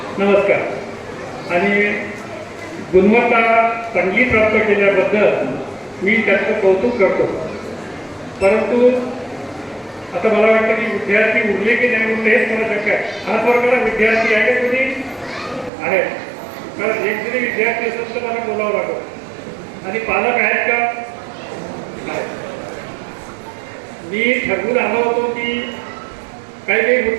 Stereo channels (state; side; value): drops out; left; at 15.7 s